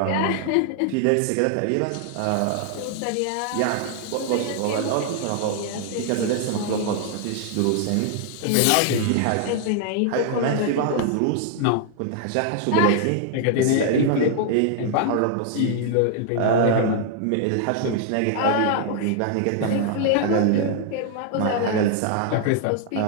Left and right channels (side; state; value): both; different; correlation 0.00